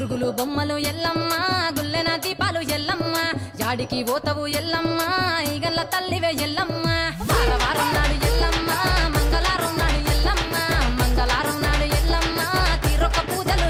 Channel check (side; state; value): both; identical; correlation 1.00